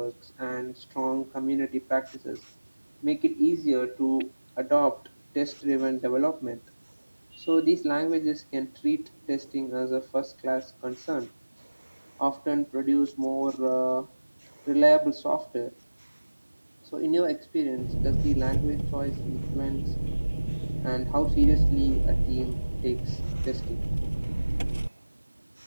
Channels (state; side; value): inverted; both; correlation -1.00